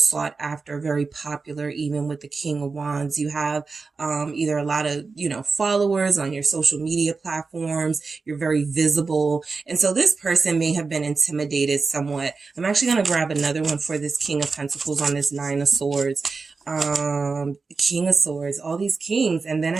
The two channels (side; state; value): left; quieter; 4.4 dB